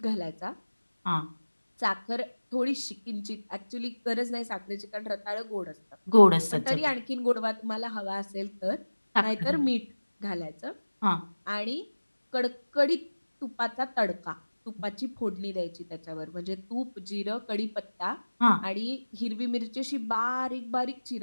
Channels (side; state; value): both; inverted; correlation -1.00